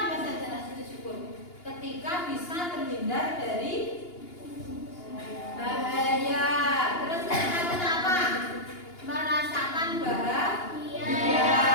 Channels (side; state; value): right; late; 2.8 ms